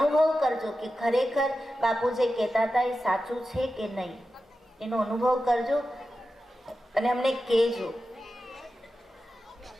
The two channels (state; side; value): normal; both; correlation 0.92